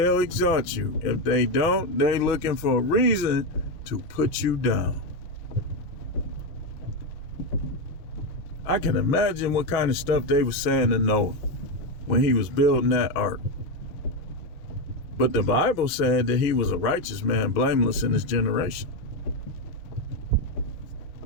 exalt you. If they don't, they're looking for a reason to put you down. I can imagine what kind of stuff they were saying to Noah when he was building that ark. But the Bible said that he was a righteous man, blameless in his generation.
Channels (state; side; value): late; right; 6.1 ms